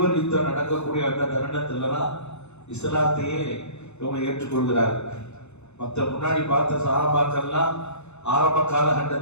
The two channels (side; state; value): right; late; 0.81 ms